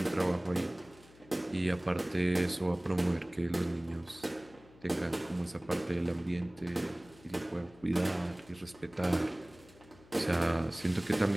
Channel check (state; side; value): noise; left; hum, 24 dB below the sound